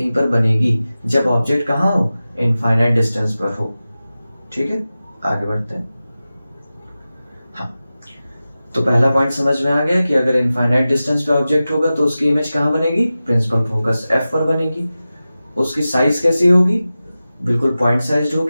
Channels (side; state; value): both; inverted; correlation -0.95